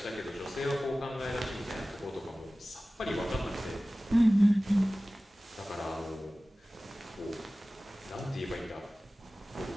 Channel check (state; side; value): normal; both; correlation 0.97